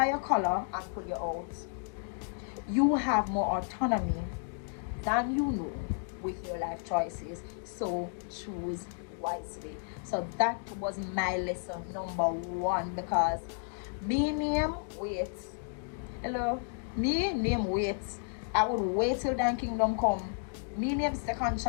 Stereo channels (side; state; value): right; silent; 56 dB below the other